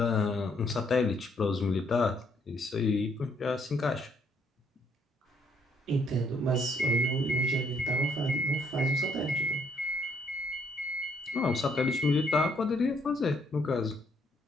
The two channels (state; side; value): normal; both; correlation 0.69